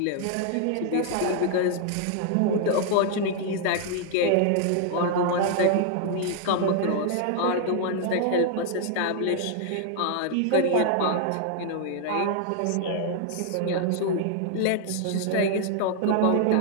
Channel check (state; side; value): different; both; correlation 0.00